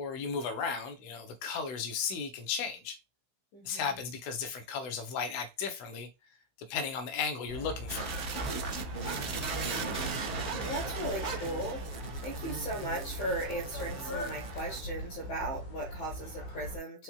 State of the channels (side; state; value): right; late; 15 ms